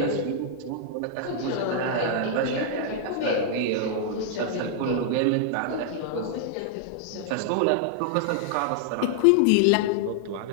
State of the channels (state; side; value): different; both; correlation -0.01